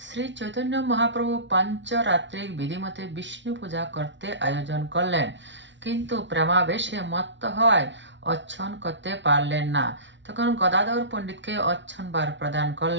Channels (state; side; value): late; left; 0.53 ms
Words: শ্রী চৈতন্য মহাপ্রভু পঞ্চরাত্রিক বিধিমতে বিষ্ণু পূজা করতে আয়োজন করলেন, কিন্তু প্রেমাবেশে মত্ত হয় অর্চন করতে পারলেন না। তখন গদাধর পণ্ডিতকে অর্চনবার প্রদান